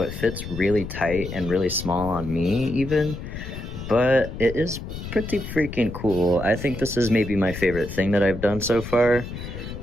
it fits really tight and really small on me even. But it is pretty freaking cool. I think this is maybe my favorite thing that I've done so far.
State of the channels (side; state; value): left; noise; rumble, 9 dB below the sound